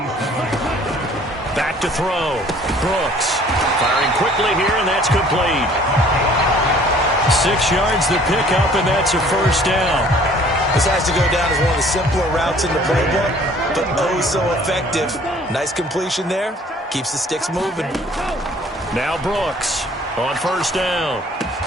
Back to throw. Brooks firing quickly here, and that's complete. 6 yards the pickup, and that's a first down. This has to go down as one of the simpler routes in the playbook, but oh so effective. Nice completion there. Keeps the sticks moving. Now Brooks on first down.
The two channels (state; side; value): normal; both; correlation 0.54